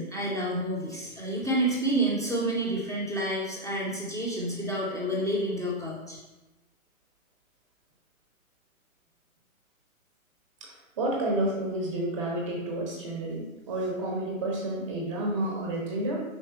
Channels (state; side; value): normal; both; correlation 0.00